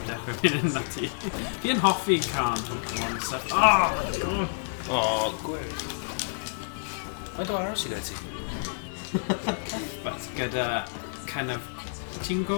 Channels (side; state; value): right; silent; digital silence